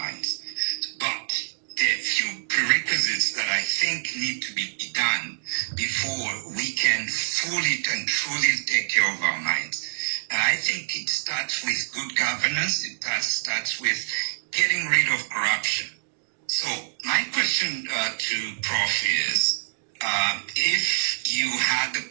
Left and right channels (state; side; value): silent; left; digital silence